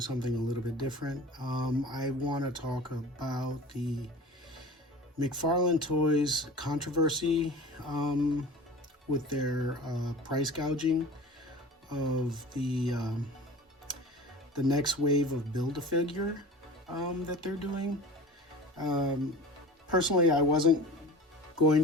something a little bit different. I want to talk about the McFarlane Toys controversy with their price gouging of the next wave of Build-A-Figure that they're doing. Personally, I wasn't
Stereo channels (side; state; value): both; normal; correlation 0.39